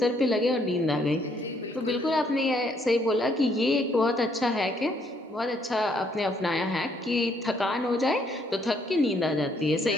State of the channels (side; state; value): both; normal; correlation 0.69